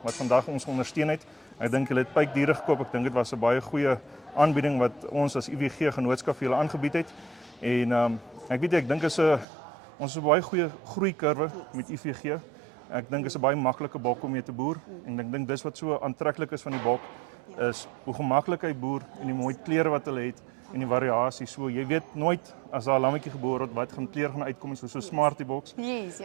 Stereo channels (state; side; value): drops out; left; at 9.5 s